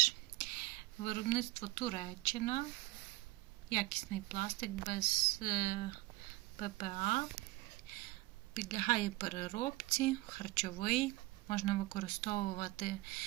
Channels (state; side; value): quieter; left; 20.3 dB